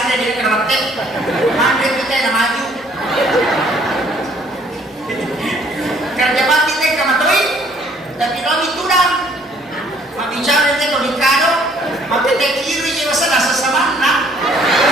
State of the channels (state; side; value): normal; both; correlation 0.61